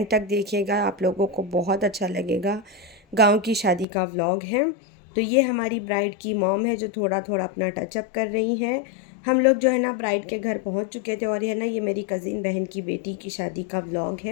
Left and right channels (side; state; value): right; drops out; at 3.9 s